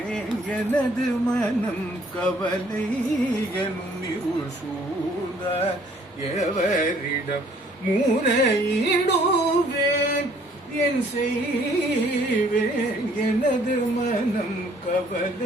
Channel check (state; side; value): normal; both; correlation 0.60